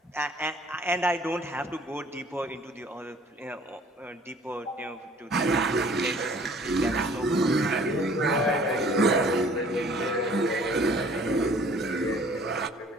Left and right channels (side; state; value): both; normal; correlation 0.53